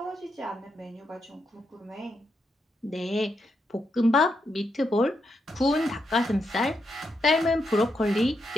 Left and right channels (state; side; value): normal; both; correlation 0.82